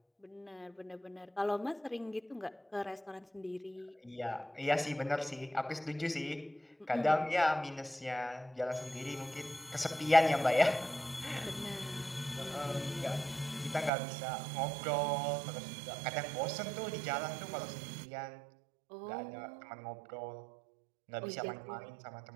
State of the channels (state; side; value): drops out; left; at 13.9 s